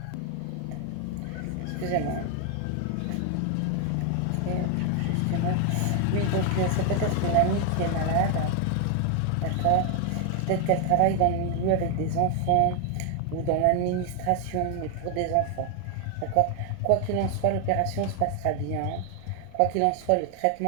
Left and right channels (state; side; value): different; both; correlation 0.01